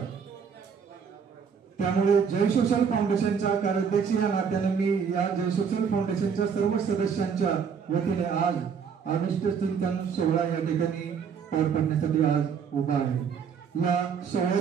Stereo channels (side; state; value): left; quieter; 6.6 dB